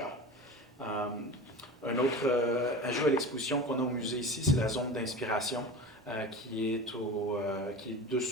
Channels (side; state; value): both; normal; correlation 0.31